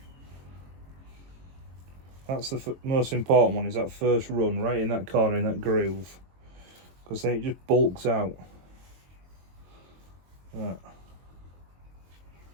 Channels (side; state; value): left; late; 22 ms